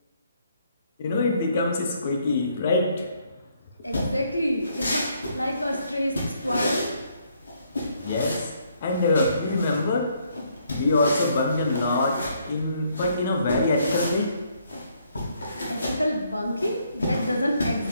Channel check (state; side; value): inverted; both; correlation -0.70